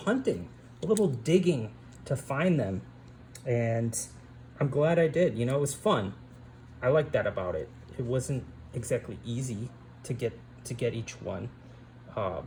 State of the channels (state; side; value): identical; both; correlation 1.00